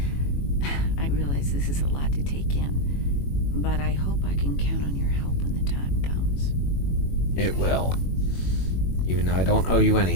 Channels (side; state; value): right; late; 21 ms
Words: I realize this is a lot to take in, but I hope I can count on your help when the time comes. It will. Even though I don't owe you